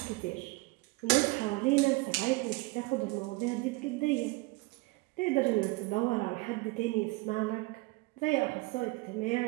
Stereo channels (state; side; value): quieter; left; 23.8 dB